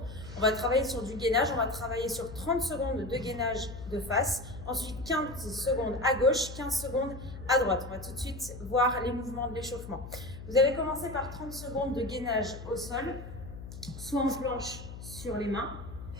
On va travailler sur du gainage, on va travailler sur 30 secondes de gainage de face, ensuite 15 secondes à gauche, 15 secondes à droite. On va tout de suite voir les mouvements de l'échauffement. Vous allez commencer par 30 secondes de gainage au sol, soit en planche sur les mains,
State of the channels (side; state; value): left; noise; hum, 12 dB below the sound